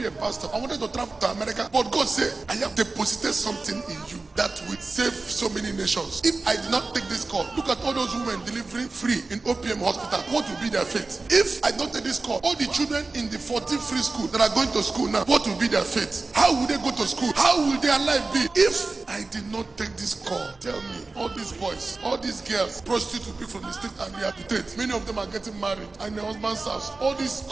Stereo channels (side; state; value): left; quieter; 3.6 dB